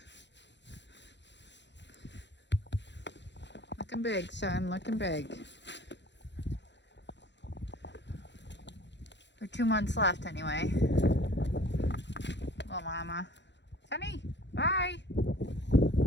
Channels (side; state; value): right; late; 0.52 ms